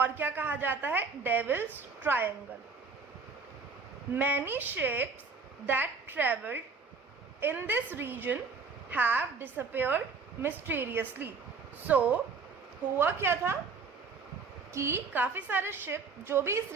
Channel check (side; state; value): left; quieter; 4.7 dB